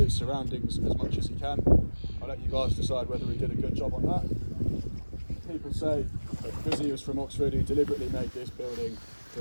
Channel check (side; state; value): both; inverted; correlation -1.00